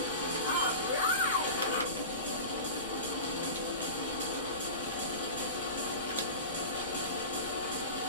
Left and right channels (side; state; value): both; inverted; correlation -0.30